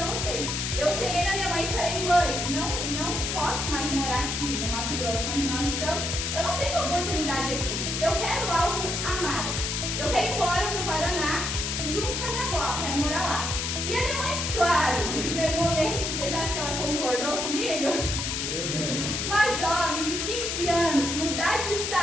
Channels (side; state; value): left; noise; hiss, 2 dB below the sound